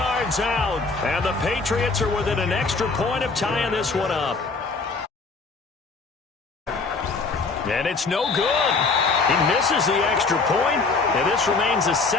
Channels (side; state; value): right; quieter; 4.1 dB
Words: out. And the Patriots are within an extra point of tying this one up. And it's no good. He misses the extra point, and this remains a